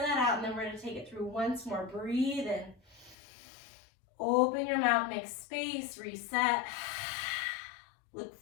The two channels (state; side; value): drops out; right; at 3.2 s